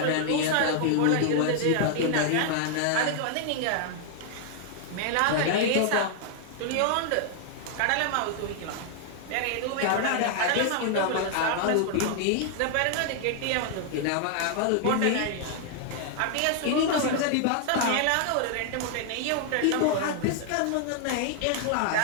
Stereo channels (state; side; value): different; both; correlation 0.00